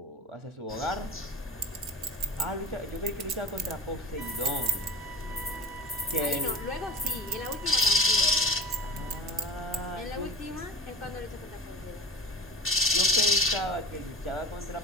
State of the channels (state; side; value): normal; both; correlation 0.35